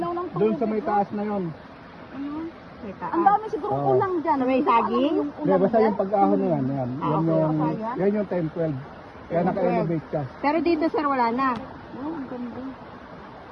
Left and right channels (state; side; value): identical; both; correlation 1.00